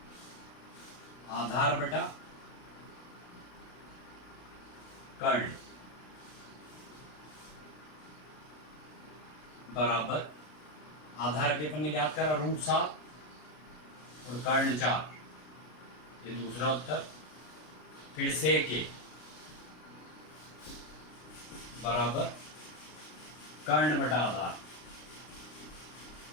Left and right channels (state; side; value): late; right; 33 ms